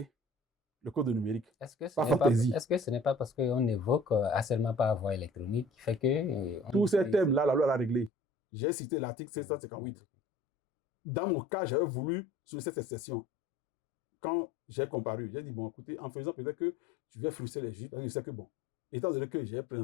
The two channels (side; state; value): right; drops out; at 8.1 s